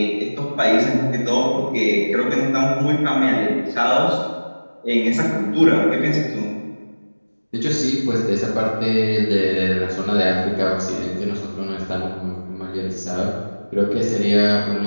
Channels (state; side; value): inverted; both; correlation -1.00